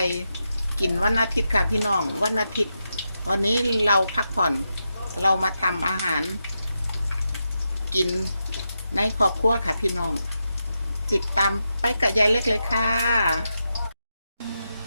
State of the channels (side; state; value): both; inverted; correlation -0.87